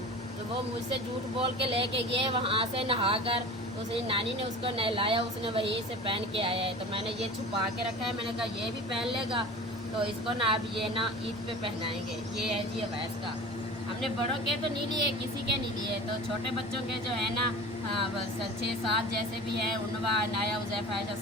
तो वो मुझसे झूठ बोल के लेके गए वहाँ से नहा कर। तो उसने नानी ने उसको नहलाया, उसने वहीं से पहन के आया है। तो मैंने ये छुपा के रखा है, मैंने कहा ये भी पहन लेगा तो इसको ना अब ये ना ईद पे पहनाएंगे। ये है जी अवैस का। हमने बड़ों के तो नहीं लिए, किसी के नहीं लिए। तो छोटे बच्चों के जो है ना 6-7 जैसे भी है, उनवा अनाया उज़ैफ़ा ऐशा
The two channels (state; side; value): normal; both; correlation 0.37